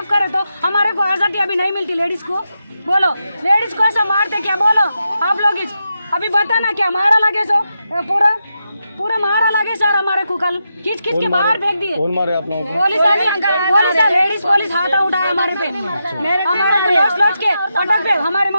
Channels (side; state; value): both; inverted; correlation -0.86